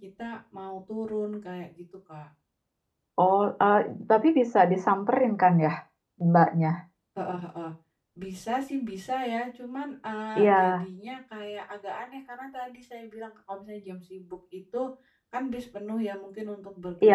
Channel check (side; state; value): both; identical; correlation 1.00